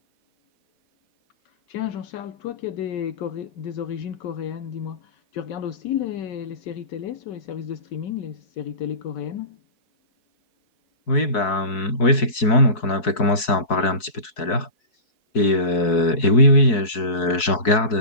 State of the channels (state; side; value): late; right; 4.6 ms